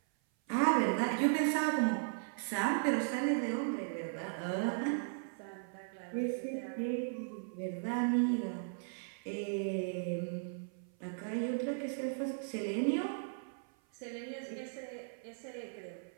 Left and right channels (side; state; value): left; silent; 53 dB below the other